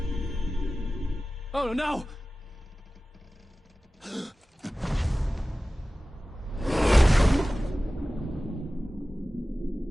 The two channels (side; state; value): both; normal; correlation 0.96